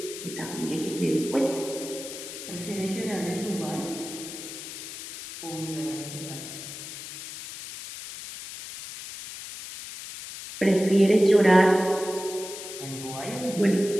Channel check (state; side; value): noise; left; hiss, 10 dB below the sound